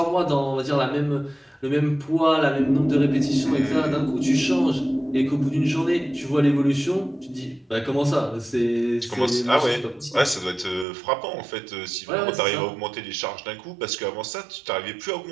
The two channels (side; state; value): left; drops out; at 10.9 s